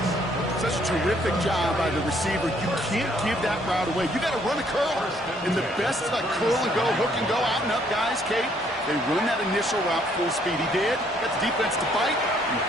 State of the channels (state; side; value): normal; both; correlation 0.66